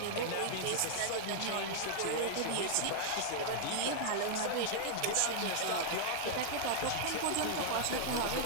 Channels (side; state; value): both; different; correlation -0.01